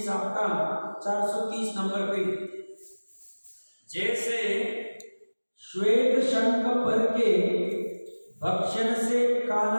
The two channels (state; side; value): inverted; both; correlation -1.00